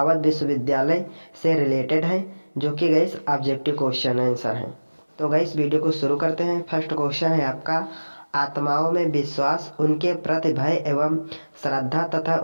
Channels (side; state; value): both; inverted; correlation -1.00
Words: विश्वविद्यालय से रिलेटेड है, जो कि गाइस ऑब्जेक्टिव क्वेश्चन आंसर है। तो गाइस वीडियो को शुरू करते हैं। फर्स्ट क्वेश्चन है आपका, आत्माओं में विश्वास, उनके प्रति भय एवं श्रद्धा तथा